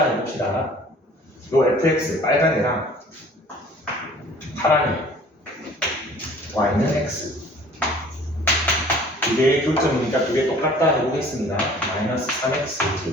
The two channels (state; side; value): normal; both; correlation 0.50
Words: 해봅시다. 요 fx 빨간 애랑 파란 애 Y는 X 두 개의 교점이니까 두 개 똑같다 해보겠습니다. 마이너스 3x